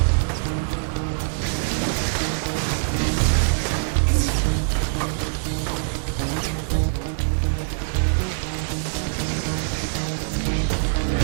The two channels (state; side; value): silent; left; digital silence